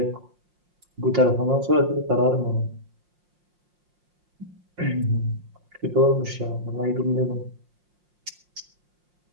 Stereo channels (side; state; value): left; late; 5.6 ms